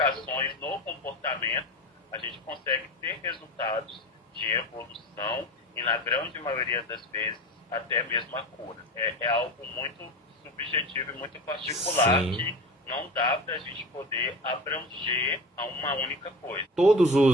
no comportamento, a gente consegue ter resultados de evolução e, na grande maioria das vezes, até mesmo a cura. É algo muito subjetivo e muito particular. Sim. Que não dá para a gente poder abranger a uma única coisa. Todos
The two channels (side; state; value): both; normal; correlation 0.30